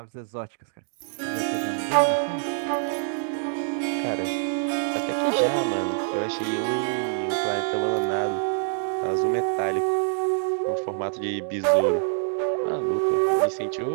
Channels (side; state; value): left; silent; digital silence